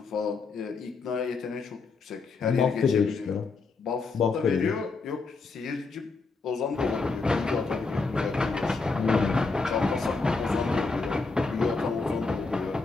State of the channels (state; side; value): quieter; right; 4.2 dB